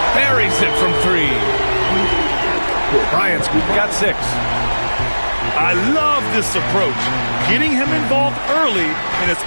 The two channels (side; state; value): both; inverted; correlation -1.00